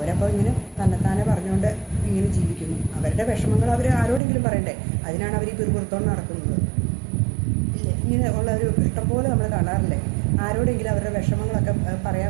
ഇങ്ങനെ തന്നെത്താനെ പറഞ്ഞുകൊണ്ട് ഇങ്ങനെ ജീവിക്കുന്നു. അവരുടെ വിഷമങ്ങൾ അവർ ആരോടെങ്കിലും പറയണ്ടേ? അതിനാണ് അവർ ഈ പിറുപുറത്തോണ്ട് നടക്കുന്നത് ഇല്ലേ? ഇങ്ങനെ ഉള്ള ഒരു ഇഷ്ടംപോലെ നമ്മൾ കാണാറില്ലേ? ആരോടെങ്കിലും അവരുടെ വിഷമങ്ങളൊക്കെ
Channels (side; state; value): left; drops out; at 4.2 s